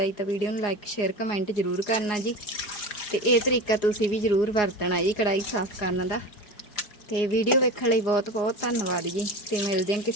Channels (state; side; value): late; right; 4.8 ms